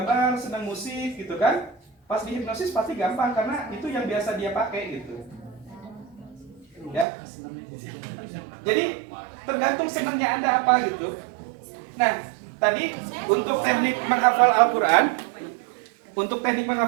senang musik gitu kan, pas dihipnosis pasti gampang karena itu yang biasa dia pakai gitu. Ya. Jadi tergantung senangnya Anda apa gitu. Nah, tadi untuk teknik menghafal Al-Quran,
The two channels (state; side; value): drops out; left; at 7.1 s